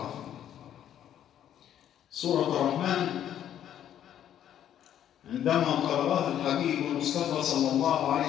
سورة الرحمن عندما قرأها الحبيب المصطفى صلى الله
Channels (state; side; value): quieter; right; 10.5 dB